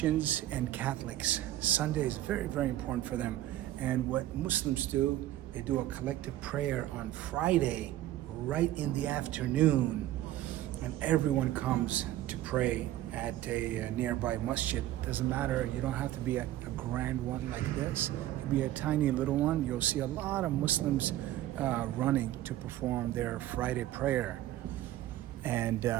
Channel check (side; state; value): left; quieter; 14.1 dB